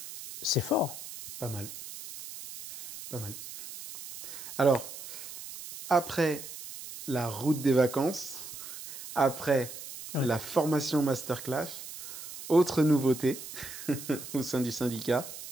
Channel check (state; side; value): noise; right; hiss, 12 dB below the sound